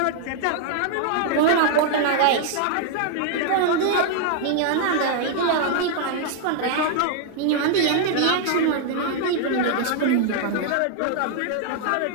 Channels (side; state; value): both; different; correlation 0.00